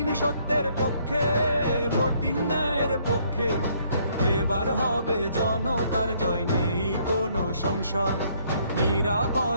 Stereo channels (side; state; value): both; inverted; correlation -0.66